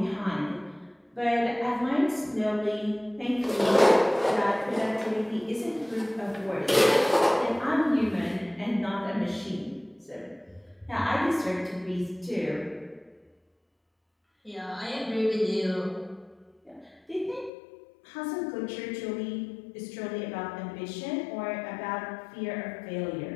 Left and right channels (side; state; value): right; drops out; at 17.5 s